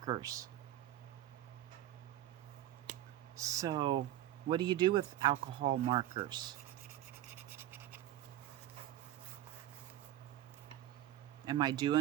So, what do you do with alcohol markers? Am I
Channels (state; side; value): quieter; left; 13.5 dB